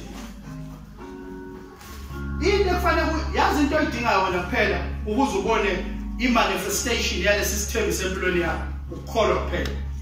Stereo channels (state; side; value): identical; both; correlation 1.00